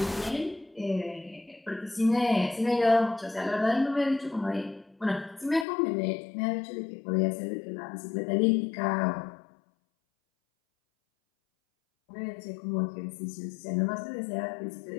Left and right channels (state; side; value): drops out; right; at 5.7 s